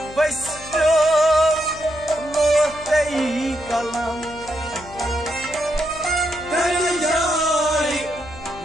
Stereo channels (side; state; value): left; noise; hum, 18 dB below the sound